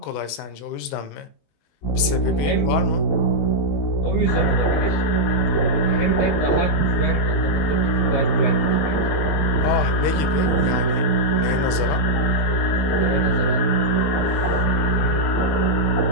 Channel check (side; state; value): right; late; 20 ms